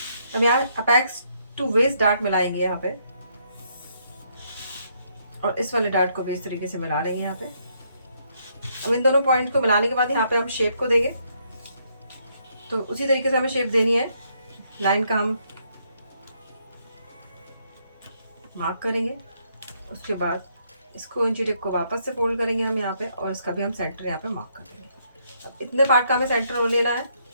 अब यहाँ अपेक्स टू वेस्ट डार्ट मिलाएंगे यहाँ पे, और इस वाले डार्ट को भी इस तरीके से मिला लेंगे यहाँ पे। अब इन दोनों पॉइंट को मिलाने के बाद यहाँ पे हम शेप को देंगे। तो उसी तरीके से हमें शेप देनी है। लाइन का हम मार्क करेंगे, उसके बाद इसको इंची टेप को वापस से फोल्ड करेंगे हम यहाँ पे, और इसका भी हम सेंटर यहाँ पे मार्क कर देंगे। अब इतने पार्ट का हमें सेंटर लेना है,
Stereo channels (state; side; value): inverted; both; correlation -0.73